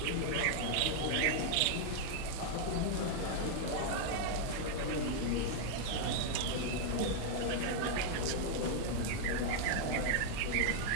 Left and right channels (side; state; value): both; different; correlation 0.00